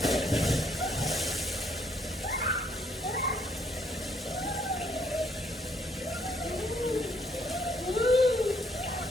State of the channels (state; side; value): normal; both; correlation 0.68